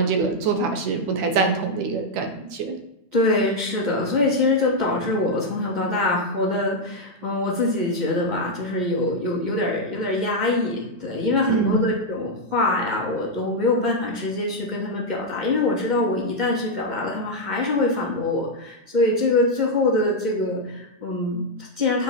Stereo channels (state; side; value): late; left; 11 ms